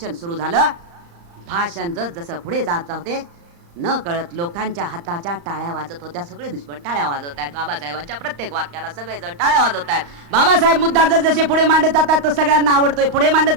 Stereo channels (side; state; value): left; late; 35 ms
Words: सुरू झालं, भाषण जसं पुढे जात होते न कळत लोकांच्या हाताच्या टाळ्या वाजत होत्या. सगळे दुश्मन टाळ्या वाजवत आहेत. बाबासाहेबांच्या प्रत्येक वाक्याला सगळेजण टाळ्या वाजवत आहेत. बाबासाहेब मुद्दा जसे पुढे मांडत जातात तो सगळ्यांना आवडतोय, पुढे मांडत